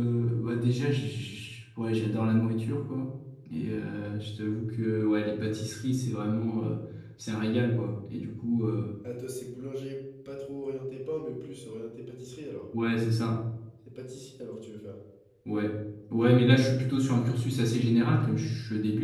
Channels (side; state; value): both; identical; correlation 1.00